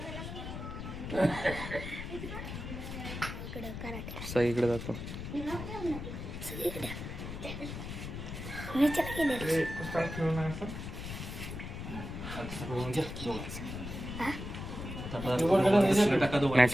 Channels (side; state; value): left; noise; rumble, 7 dB below the sound